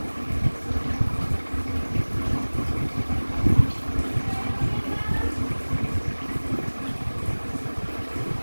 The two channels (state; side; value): inverted; both; correlation -1.00